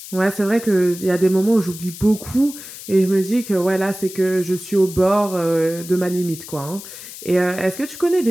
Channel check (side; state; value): left; noise; hiss, 13 dB below the sound